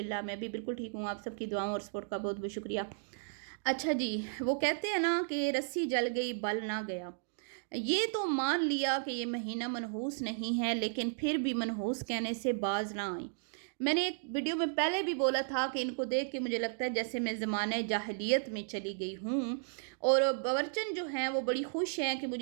मैं भी बिल्कुल ठीक हूँ। आप सबकी दुआओं और सपोर्ट का बहुत-बहुत शुक्रिया। अच्छा जी, वो कहते हैं ना कि रस्सी जल गई बल ना गया। ये तो मान लिया कि ये महीना मनहूस नहीं है, लेकिन फिर भी मनहूस कहने से बाज़ ना आई। मैंने एक वीडियो में पहले भी बोला था कि इनको देख के मुझे लगता है जैसे मैं ज़माने जाहिलियत में चली गई हूँ और बावर्चन जो हैं वो बड़ी खुश हैं कि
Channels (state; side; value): silent; left; digital silence